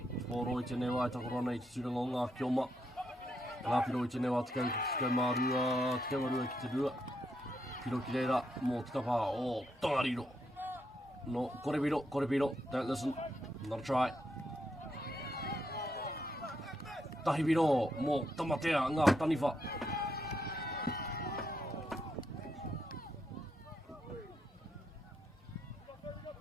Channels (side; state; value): both; normal; correlation 0.79